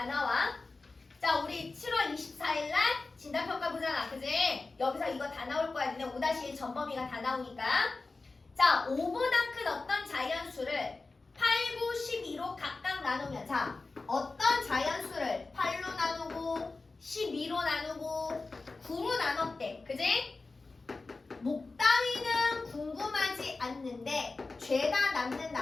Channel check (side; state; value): right; quieter; 3.7 dB